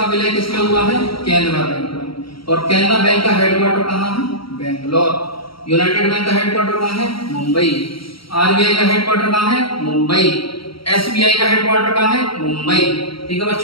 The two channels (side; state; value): right; late; 0.75 ms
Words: विलय किसमें हुआ है? केनरा बैंक में। और केनरा बैंक का हेडक्वार्टर कहाँ है? बेंगलोर। यूनाइटेड बैंक का हेडक्वार्टर कहाँ है? मुंबई। आरबीआई का हेडक्वार्टर कहाँ है? मुंबई। एसबीआई का हेडक्वार्टर कहाँ है? मुंबई। ठीक है